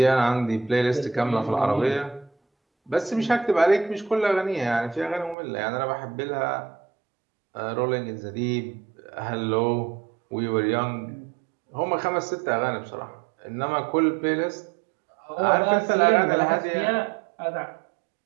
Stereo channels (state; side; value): drops out; left; at 5.4 s